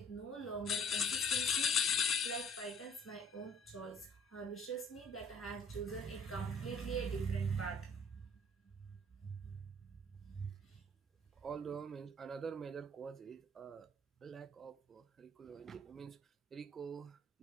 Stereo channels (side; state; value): both; normal; correlation 0.57